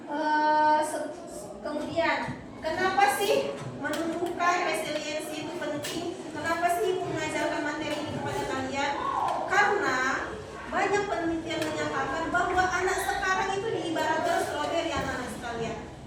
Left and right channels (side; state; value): both; identical; correlation 1.00